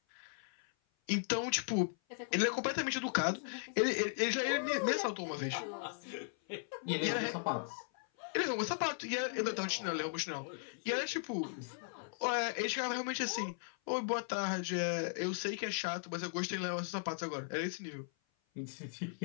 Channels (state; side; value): silent; right; 53 dB below the other